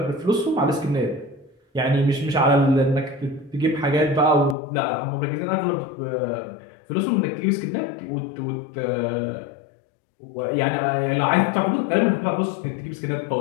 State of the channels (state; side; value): drops out; right; at 4.5 s